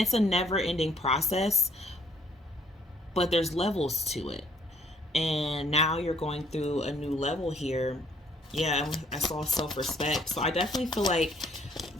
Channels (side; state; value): both; normal; correlation 0.64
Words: a never ending process, but there's levels to it. And now you're going through a new level here. Yeah, I saw self-respect. So I definitely feel like